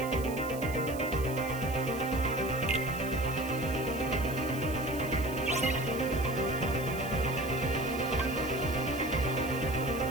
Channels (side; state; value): right; noise; hiss, 15 dB below the sound